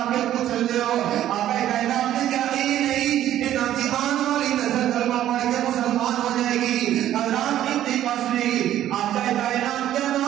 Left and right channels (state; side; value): quieter; left; 12.2 dB